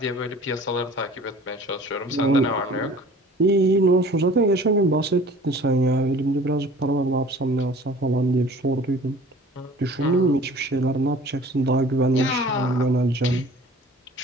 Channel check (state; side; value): normal; both; correlation 0.47